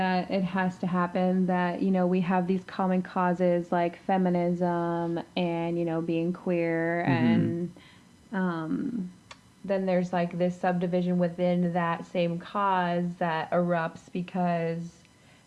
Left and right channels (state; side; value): identical; both; correlation 1.00